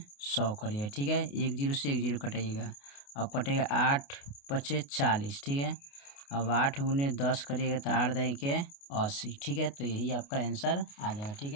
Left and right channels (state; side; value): late; right; 28 ms